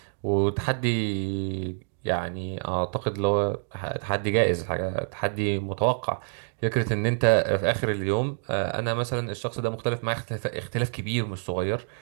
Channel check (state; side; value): silent; left; digital silence